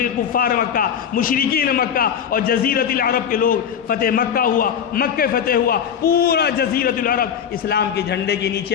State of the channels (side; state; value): right; quieter; 8.2 dB